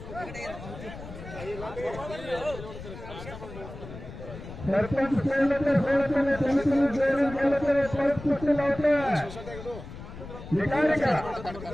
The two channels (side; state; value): left; noise; rumble, 12 dB below the sound